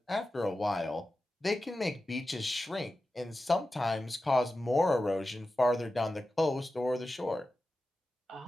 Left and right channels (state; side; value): normal; both; correlation 0.93